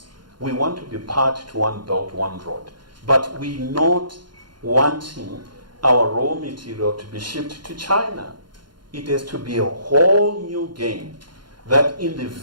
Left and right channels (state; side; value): late; left; 0.71 ms